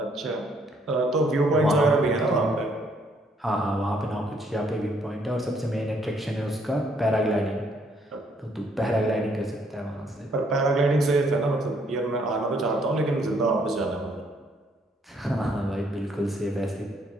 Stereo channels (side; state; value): both; normal; correlation 0.68